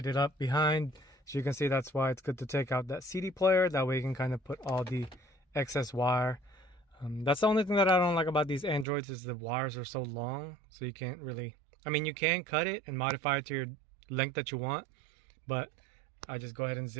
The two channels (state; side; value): drops out; left; at 8.8 s